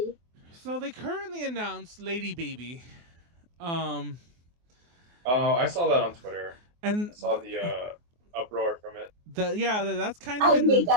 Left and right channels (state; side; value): late; left; 24 ms